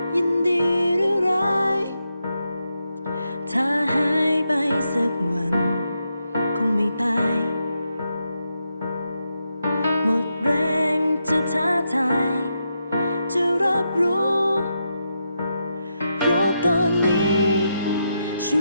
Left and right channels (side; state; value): both; inverted; correlation -0.84